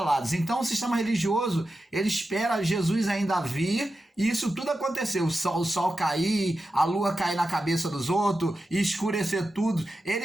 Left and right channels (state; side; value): normal; both; correlation 0.91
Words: Então o sistema religioso, ele espera Jesus ainda vir, e isso tudo aconteceu. O sol cair, a lua cair na cabeça dos outros, e escurecer tudo.